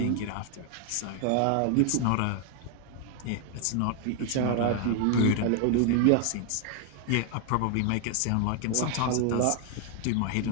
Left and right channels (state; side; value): different; both; correlation 0.00